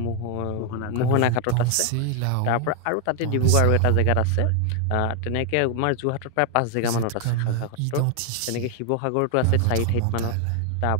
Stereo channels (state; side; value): different; both; correlation 0.00